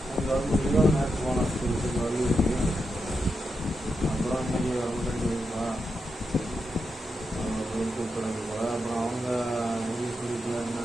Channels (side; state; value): both; normal; correlation 0.86